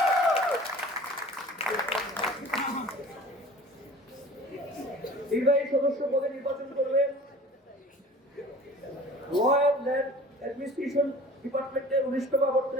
নির্বাহী সদস্য পদে নির্বাচন করবেন ল অ্যান্ড ল্যান্ড অ্যাডমিনিস্ট্রেশন ডিপার্টমেন্টের 19তম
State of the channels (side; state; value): both; normal; correlation 0.44